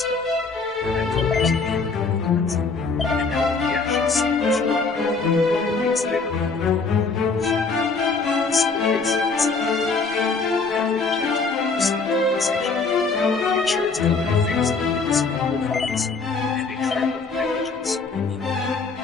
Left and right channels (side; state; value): right; quieter; 4.3 dB